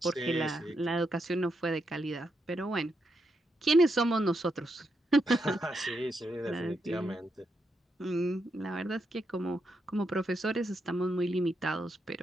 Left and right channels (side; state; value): both; normal; correlation 0.82